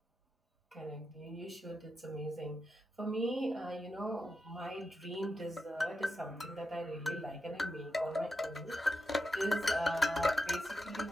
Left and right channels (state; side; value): normal; both; correlation 0.87